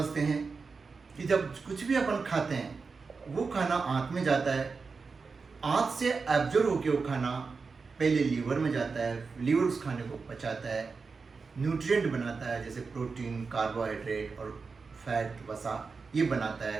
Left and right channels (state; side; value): quieter; left; 4.7 dB